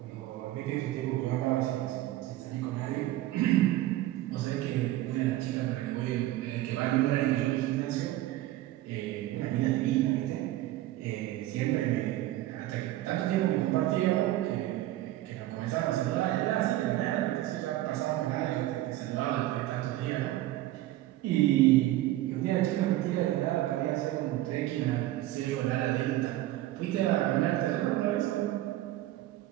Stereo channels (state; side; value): quieter; left; 15.4 dB